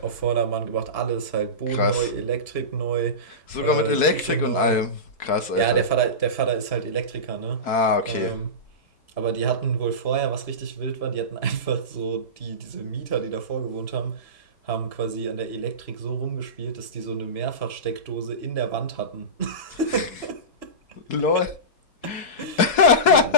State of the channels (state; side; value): late; right; 4.6 ms